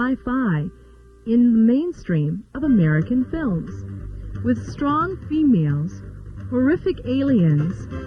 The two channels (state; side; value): identical; both; correlation 1.00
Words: in the mainstream of American films, with strong females, horrific aliens,